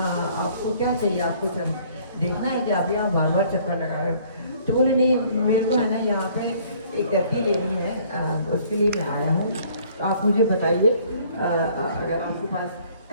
क्या चाहिए, आपको चल देखना है कि आप यहाँ बार बार चक्कर लगा रहे हो। तो बोले नहीं, मेरे को है ना यहाँ पे एक गद्दी लेनी है, उसके लिए मैं आया हूँ, तो आप मुझे बताइए अगर आपके पास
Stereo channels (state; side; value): inverted; both; correlation -0.58